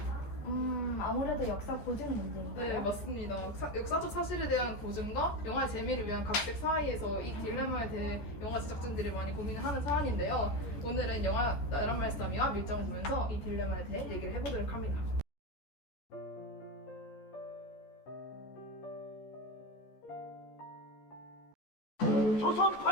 아무래도 역사 고증 문제인가요? 네, 맞습니다. 역사적 사실에 대한 고증과 영화의 재미를 위한 각색 사이에서 이 딜레마에 대해 영화 제작진들이 많이 고민을 하는 사안인데요. 오늘은 영화 나란 말싸미와 밀정을 보면서 이 딜레마에 대해 얘기를 해보도록 합니다. 조선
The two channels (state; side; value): late; right; 14 ms